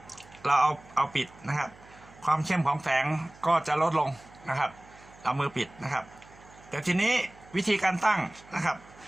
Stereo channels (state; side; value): noise; right; hum, 23 dB below the sound